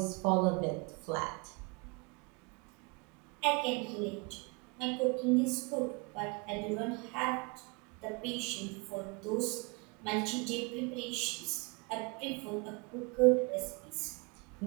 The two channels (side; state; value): left; quieter; 30.3 dB